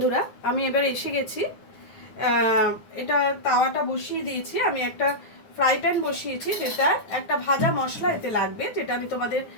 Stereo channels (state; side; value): late; right; 9.7 ms